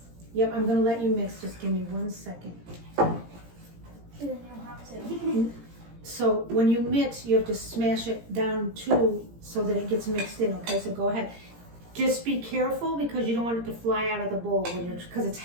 Yep, I'm gonna let you mix. Just give me 1 second. Then you'll have to. So when you mix, you have to smash it down too so that it gets mixed in, okay? So go ahead. Just be careful because you don't want it to fly out of the bowl because it's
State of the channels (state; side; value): late; left; 17 ms